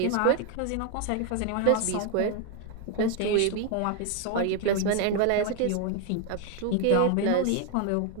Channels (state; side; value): different; both; correlation 0.01